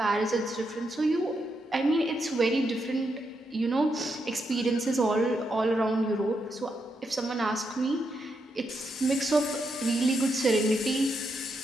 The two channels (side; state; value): both; normal; correlation 0.82